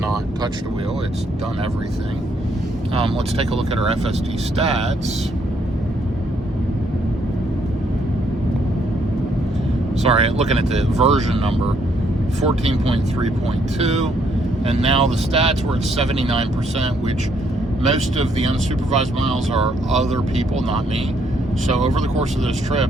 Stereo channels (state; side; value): normal; both; correlation 0.71